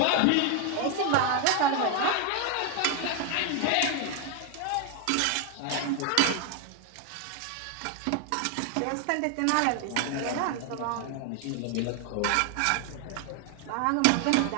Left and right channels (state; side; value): different; both; correlation 0.01